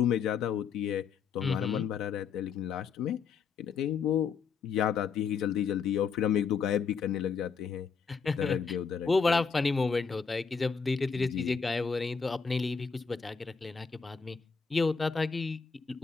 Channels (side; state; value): right; quieter; 5.8 dB